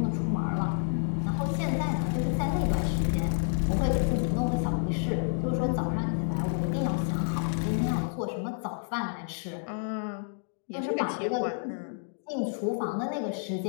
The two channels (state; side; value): silent; right; digital silence